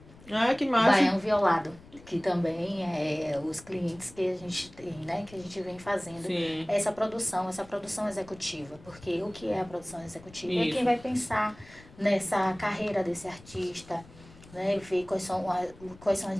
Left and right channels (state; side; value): noise; left; rumble, 22 dB below the sound